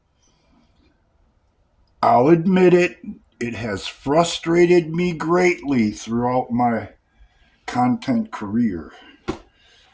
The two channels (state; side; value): identical; both; correlation 1.00